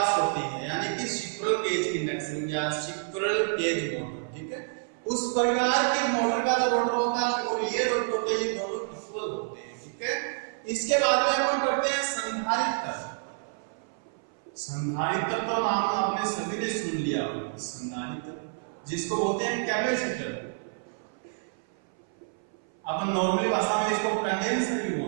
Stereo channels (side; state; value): left; silent; 58 dB below the other